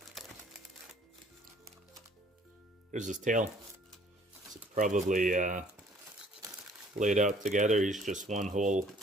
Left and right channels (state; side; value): normal; both; correlation 0.58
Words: There's his tail. It's probably laid out together. He's just one whole